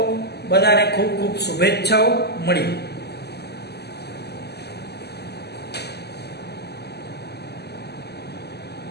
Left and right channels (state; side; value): late; right; 0.48 ms